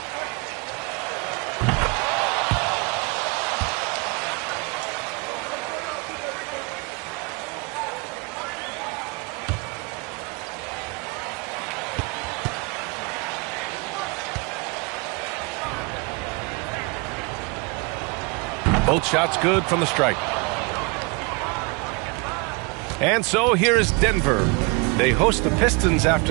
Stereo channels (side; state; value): left; quieter; 29.6 dB